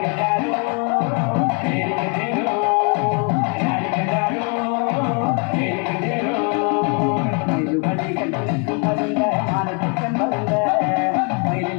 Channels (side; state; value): right; quieter; 35.4 dB